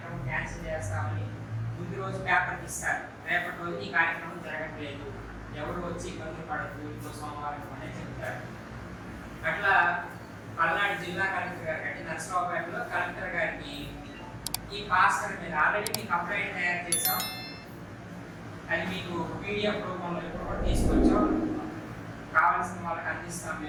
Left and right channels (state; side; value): identical; both; correlation 1.00